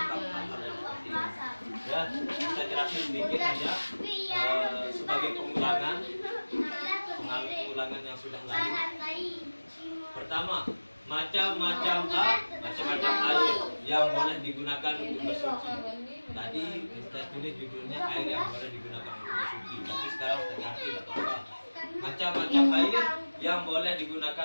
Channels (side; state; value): both; inverted; correlation -1.00